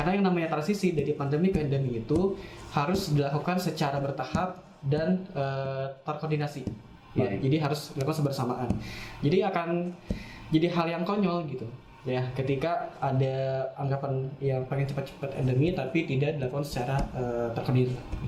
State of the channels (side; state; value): both; identical; correlation 1.00